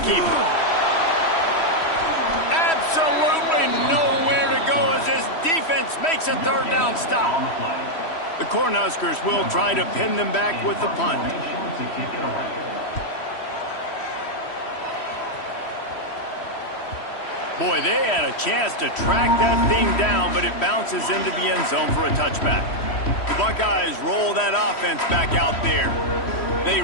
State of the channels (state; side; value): late; right; 3.1 ms